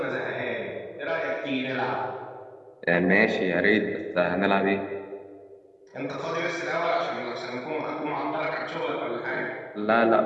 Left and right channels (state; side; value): identical; both; correlation 1.00